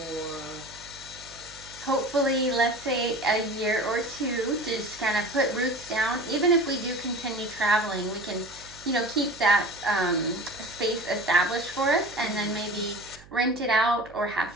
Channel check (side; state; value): right; noise; hum, 22 dB below the sound